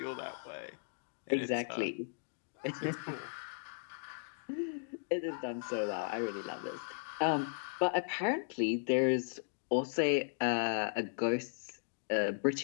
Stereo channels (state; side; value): silent; right; digital silence